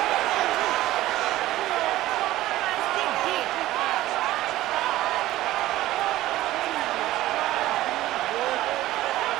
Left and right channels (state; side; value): quieter; left; 15.7 dB